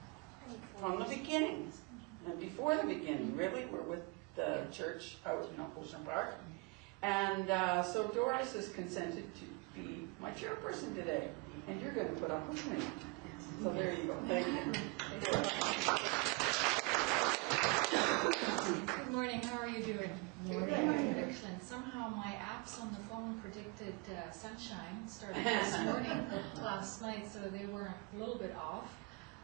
the beginning, and before the beginning, really. We're with the church out in Ocean Park. And so Doris has consented to be my chairperson today, and you're going to put up with me. So there you go. Thank you. Good morning. How are you doing? Good. Excellent. Somehow my apps on the phone predicted sunshine starting this morning last night, so they were a little bit off.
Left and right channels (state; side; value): quieter; left; 28.4 dB